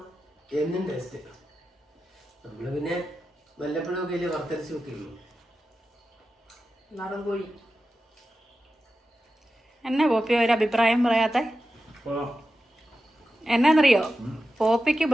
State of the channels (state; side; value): normal; both; correlation 0.92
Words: എന്നും ടേസ്റ്റ്. നമ്മള് പിന്നെ വല്ലപ്പോഴും ഒക്കെ അല്ലേ വറുത്തരച്ച് വെക്കുള്ളൂ. നാടൻ കോഴി എന്നാ പോപ്പി ഒരു അഭിപ്രായം പറയാത്ത? എന്നാന്നറിയോ, പോപ്പിക്ക്